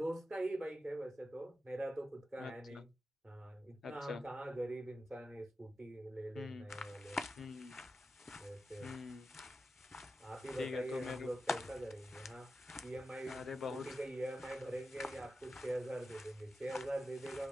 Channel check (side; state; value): both; normal; correlation 0.91